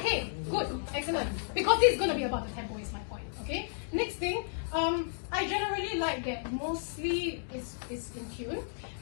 good. Excellent. Because this is going to be about the tempo is my point. Okay? Next thing, I generally like that mostly is in tune.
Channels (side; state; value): right; silent; digital silence